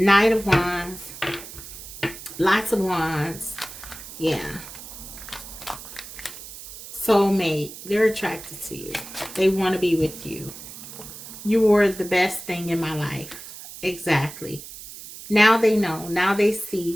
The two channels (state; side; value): noise; right; hiss, 13 dB below the sound